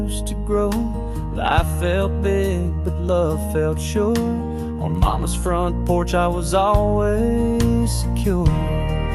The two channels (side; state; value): both; identical; correlation 1.00